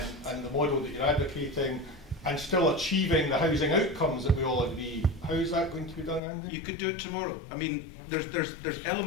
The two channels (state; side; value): drops out; right; at 6.2 s